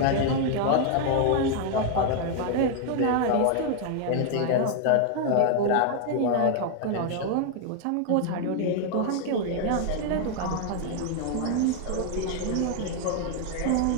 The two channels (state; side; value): different; both; correlation 0.00